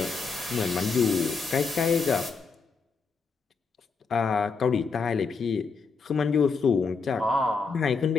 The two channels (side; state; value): right; quieter; 4.8 dB